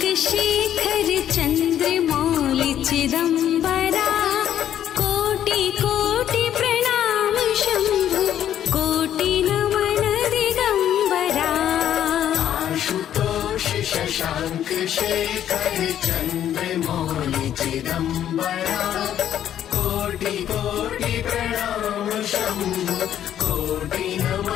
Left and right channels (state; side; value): quieter; right; 10.6 dB